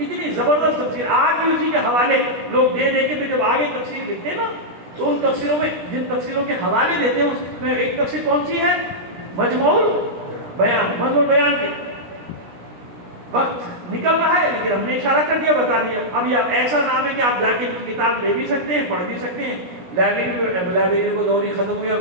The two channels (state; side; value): late; left; 17 ms